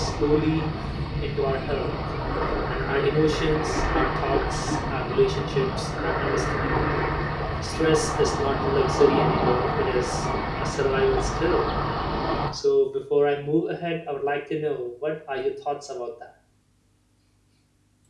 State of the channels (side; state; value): both; identical; correlation 1.00